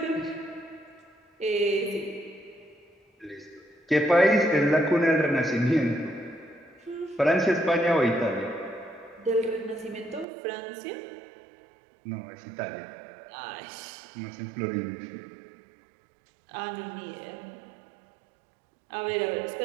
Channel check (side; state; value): left; drops out; at 10.2 s